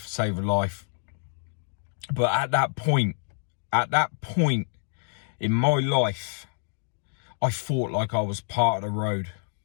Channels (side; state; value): right; silent; digital silence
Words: save a life. But at that point in my life, I fought like I was part of the road.